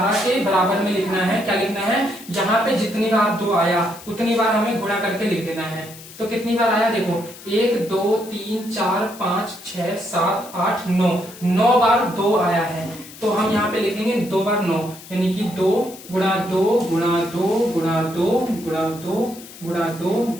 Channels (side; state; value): left; noise; hiss, 17 dB below the sound